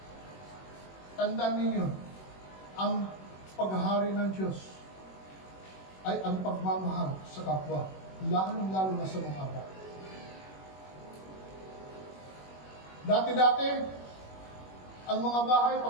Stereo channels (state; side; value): late; right; 21 ms